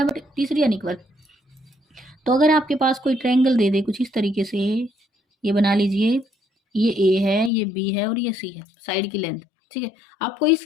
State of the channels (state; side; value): drops out; right; at 7.5 s